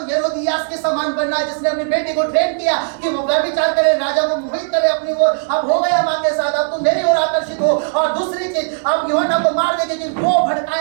हेरोदियास के समान बनना है, जिसने अपनी बेटी को ट्रेन किया कि वो व्यभिचार करे, राजा को मोहित करे अपनी ओर। अब हो गया माँ के साथ, अब तुम मेरी ओर आकर्षित हो। और दूसरी चीज, अब यूहन्ना को मार देंगे कि वो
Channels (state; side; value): silent; left; 68 dB below the other